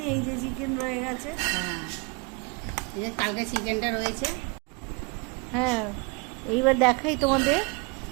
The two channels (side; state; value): left; quieter; 30.4 dB